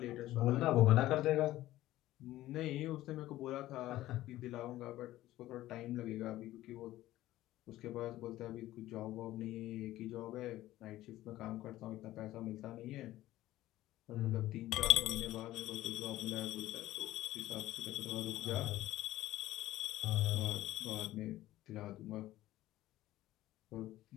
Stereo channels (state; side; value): quieter; right; 15.4 dB